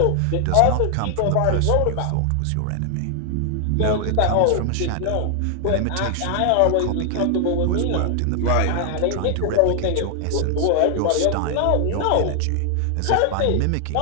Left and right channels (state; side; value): different; both; correlation 0.00